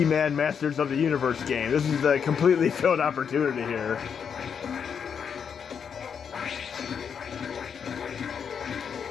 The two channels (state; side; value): quieter; right; 7.1 dB